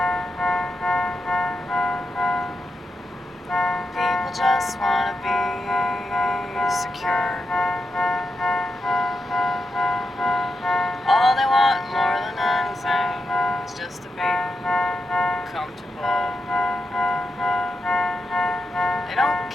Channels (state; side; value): normal; both; correlation 0.86